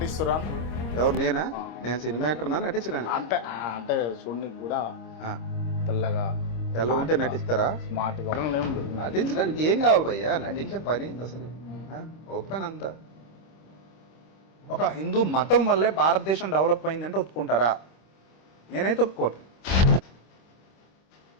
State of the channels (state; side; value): late; right; 26 ms